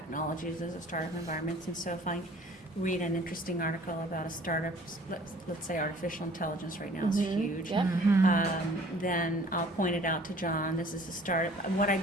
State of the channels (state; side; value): normal; both; correlation 0.52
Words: as a startup environments. And so if I read an interesting article about a startup, let's say artificial intelligence right now is huge, Yep. then I'll point it out to John. This is a startup. And what I